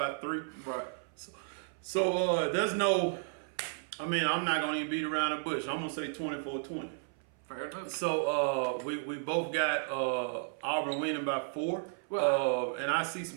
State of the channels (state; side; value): silent; left; 55 dB below the other